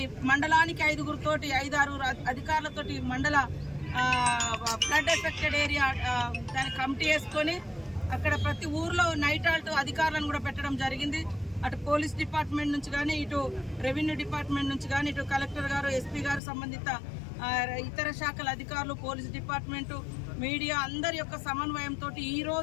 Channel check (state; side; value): drops out; right; at 16.4 s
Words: మండలానికి 5-6 అధికారులతోటి మండల ఫ్లడ్ ఎఫెక్టెడ్ ఏరియా దాని కమిటీ వేసుకొని అక్కడ ప్రతి ఊర్లో నైట్ ఆల్ట్ అధికారులను కూడా పెట్టడం జరిగింది। అటు పోలీస్ డిపార్ట్మెంట్ నుంచి కానీ, ఇటు రెవెన్యూ డిపార్ట్మెంట్ నుంచి కానీ, ఇటు కలెక్టర్ గారు, ఎస్పీ గారు, సంబంధిత ఇతర శాఖల అధికారులు, పోలీస్ డిపార్ట్మెంటు, మీడియా అందరి యొక్క సమన్వయంతో ఈ